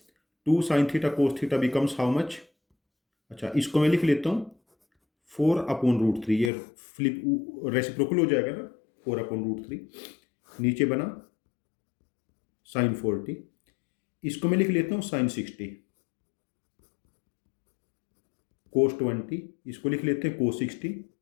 2 sin theta cos theta becomes how much. अच्छा, इसको मैं लिख लेता हूँ 4/√3, ये फ्लिप रेसिप्रोकल हो जाएगा ना, 4/√3। नीचे बना sin 40, इसको मैं लिख लेता हूँ sin 60 cos 20, इसको लिख लेते हैं cos 60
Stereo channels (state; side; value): drops out; right; at 6.5 s